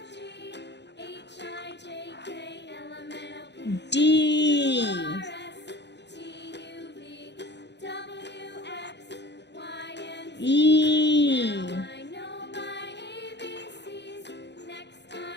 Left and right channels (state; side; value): late; right; 0.50 ms